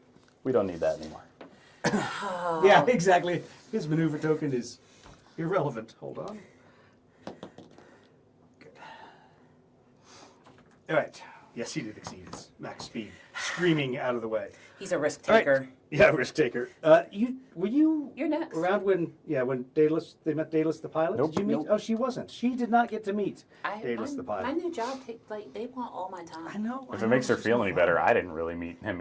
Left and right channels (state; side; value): identical; both; correlation 1.00